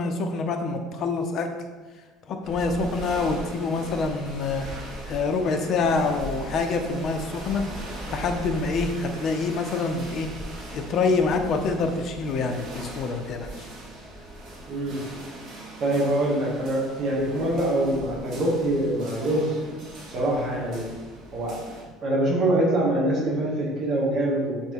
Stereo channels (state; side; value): normal; both; correlation 0.51